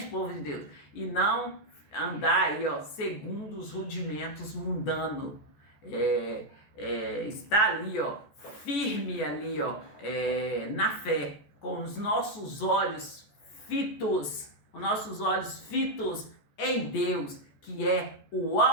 povo de Deus? E não andar aí, ó, segundo os rudimentos mundanos. Está ali, ó, firme ali, ó, na fé, com os nossos olhos fitos em Deus, que é o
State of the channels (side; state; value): right; late; 14 ms